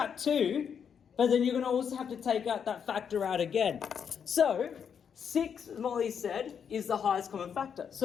2, but then you're going to also have to take out that factor out again. So, 6, as Molly said, is the highest common factor.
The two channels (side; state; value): right; quieter; 7.4 dB